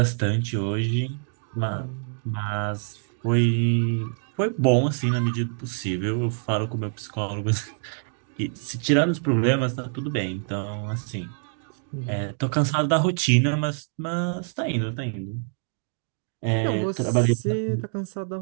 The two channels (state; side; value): silent; left; 61 dB below the other